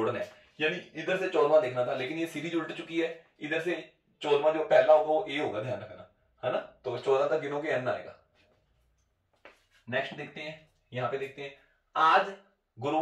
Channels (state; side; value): identical; both; correlation 1.00